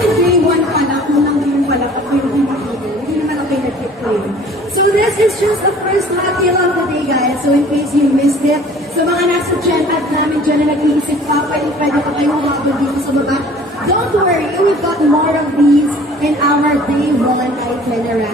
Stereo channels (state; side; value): normal; both; correlation 0.50